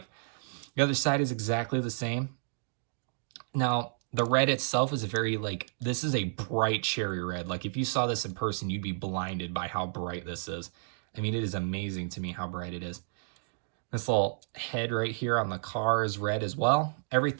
The other side is exactly the same. Now, the red itself is a very, like, this is a bright cherry red. Like, if you saw this in person, you'd be blinded by how bright this is. I mean, it is amazing to me how bright it is. This little head right here on the car is red as well.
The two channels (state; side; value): silent; left; digital silence